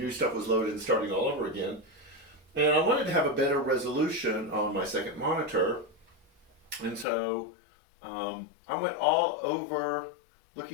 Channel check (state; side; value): drops out; right; at 7.1 s